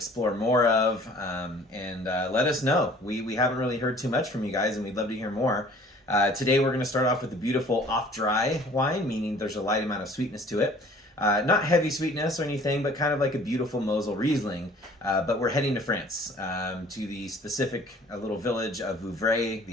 more of, and let us know. We haven't really heard too much from you guys, and we'd love to hear more. Today we're going to start off with a beautiful off-dry wine, meaning there's a light amount of sweetness to it. Not heavy sweetness or anything, but kind of like a beautiful Mosel Riesling. But we're heading to France, to the specific little village of Vouvray,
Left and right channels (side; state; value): both; normal; correlation 0.52